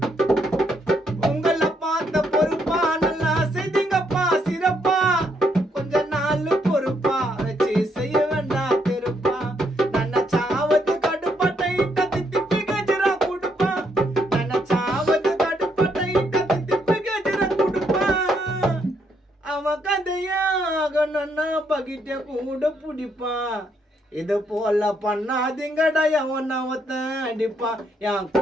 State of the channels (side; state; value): both; normal; correlation 0.74